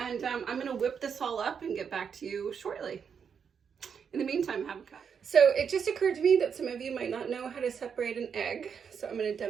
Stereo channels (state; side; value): quieter; left; 6.9 dB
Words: I'm gonna whip this all up and get back to you shortly. In the meantime, have a cup. So it just occurred to me that some of you might not know how to separate an egg, so I'm gonna